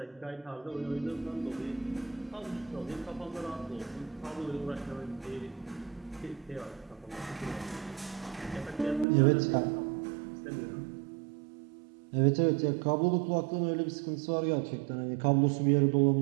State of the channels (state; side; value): drops out; left; at 9.1 s